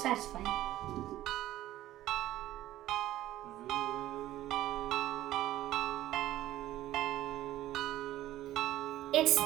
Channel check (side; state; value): left; quieter; 14.3 dB